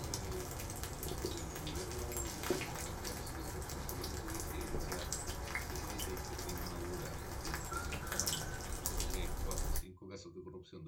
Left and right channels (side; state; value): both; identical; correlation 1.00